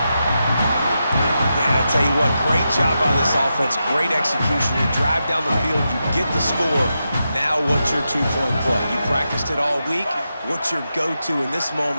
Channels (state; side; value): inverted; both; correlation -0.88